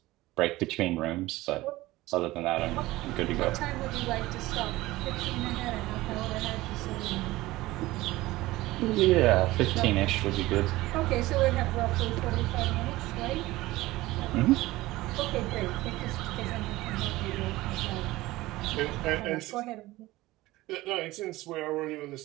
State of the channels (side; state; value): left; quieter; 18.4 dB